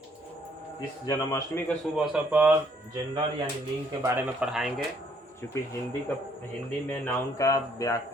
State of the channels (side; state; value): both; normal; correlation 0.66